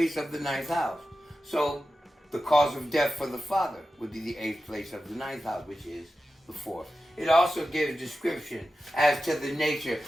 of the 9th house. So the cause of death for the father would be the 8th place of the 9th house, which is the 4th. It also gives description as to the nature,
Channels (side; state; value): both; normal; correlation 0.92